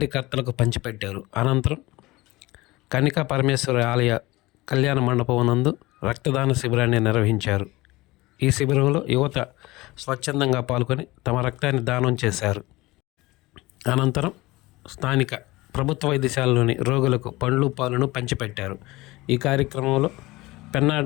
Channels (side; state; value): right; quieter; 20.4 dB